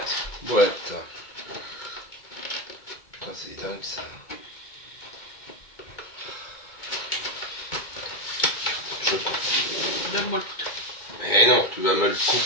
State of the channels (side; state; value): right; late; 2.2 ms